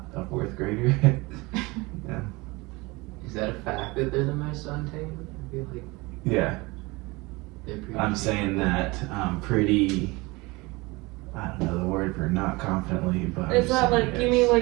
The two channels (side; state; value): left; quieter; 23.9 dB